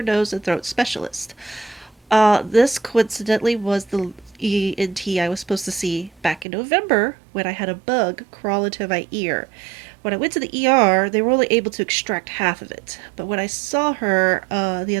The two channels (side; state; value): left; drops out; at 6.5 s